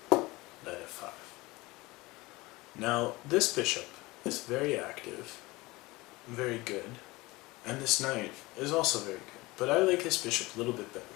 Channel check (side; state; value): right; quieter; 21.7 dB